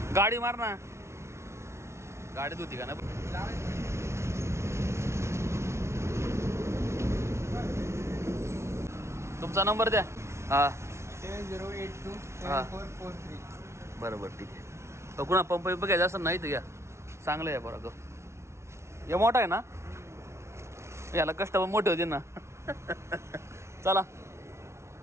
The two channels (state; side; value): late; left; 0.13 ms